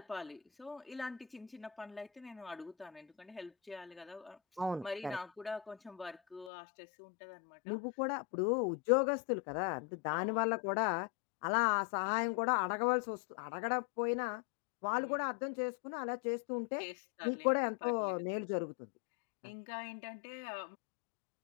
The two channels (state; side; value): drops out; right; at 6.5 s